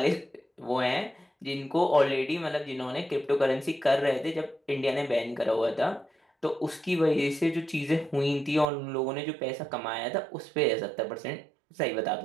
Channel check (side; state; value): left; drops out; at 8.7 s